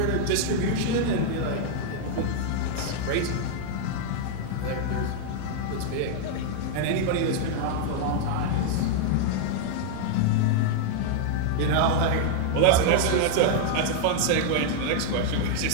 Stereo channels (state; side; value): different; both; correlation 0.00